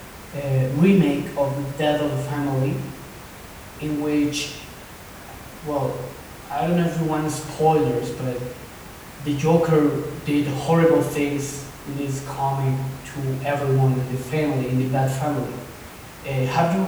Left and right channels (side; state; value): both; identical; correlation 1.00